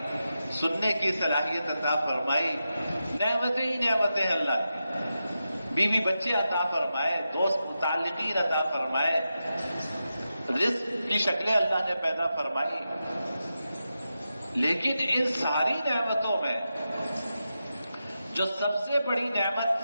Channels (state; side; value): inverted; both; correlation -0.90